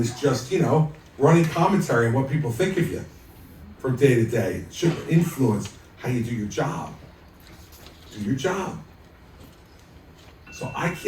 is just, running commentary on what people think of you from day to day. It should influence how you do your job. Do your job. So I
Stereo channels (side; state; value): both; identical; correlation 1.00